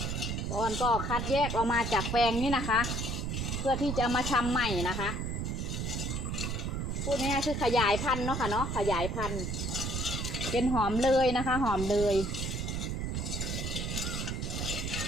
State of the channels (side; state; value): right; noise; rumble, 2 dB below the sound